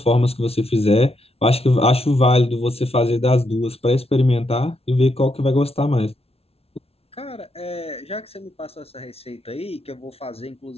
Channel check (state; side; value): late; right; 0.29 ms